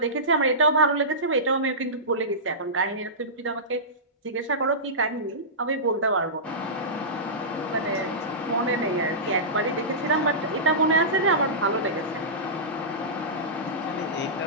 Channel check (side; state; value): both; normal; correlation -0.18